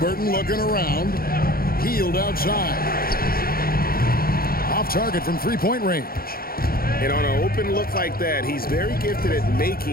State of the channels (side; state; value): right; late; 0.43 ms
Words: looking around. Hield outside. Off target from three-point range. And on an open look like that, he's very gifted at